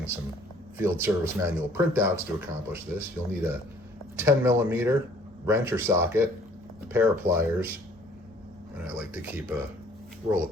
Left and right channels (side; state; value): left; noise; rumble, 28 dB below the sound